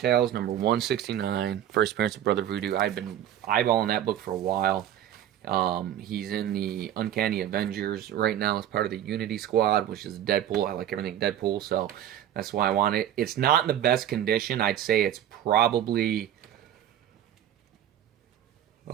number 169, first appearance of Brother Voodoo. I've been eyeballing that book for a while. He's in the Uncanny Avengers right now as part of the Unity Squad, which is Deadpool. I like everything Deadpool, so that's why I want it. It's not in the best condition. I'd say it's probably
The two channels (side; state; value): left; quieter; 11.0 dB